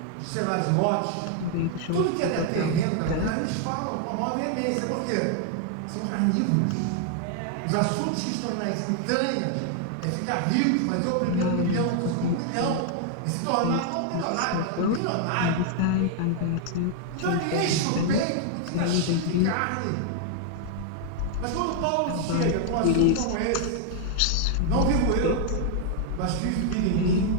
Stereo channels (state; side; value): different; both; correlation 0.00